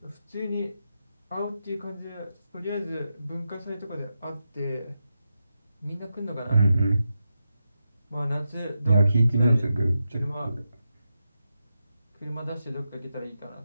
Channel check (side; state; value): both; inverted; correlation -0.88